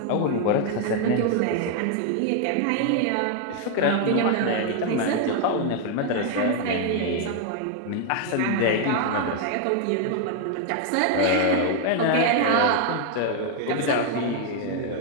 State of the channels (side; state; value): both; different; correlation 0.00